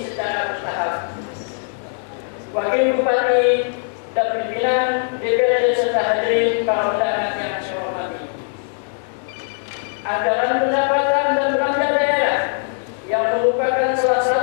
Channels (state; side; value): silent; right; digital silence